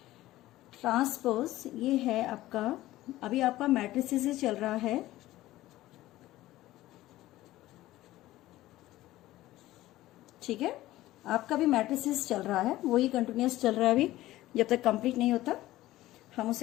ट्रांसपोज ये है आपका, अभी आपका मैट्रिसेस चल रहा है, ठीक है, आपका भी मैट्रिसेस चल रहा है, वही कंटिन्यूस चल रहा है अभी, जब तक कंप्लीट नहीं होता हम उस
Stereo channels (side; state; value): right; quieter; 16.1 dB